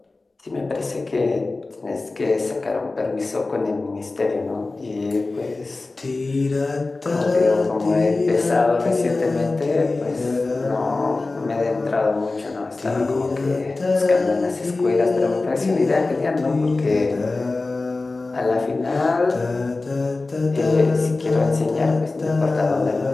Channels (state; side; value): quieter; right; 3.4 dB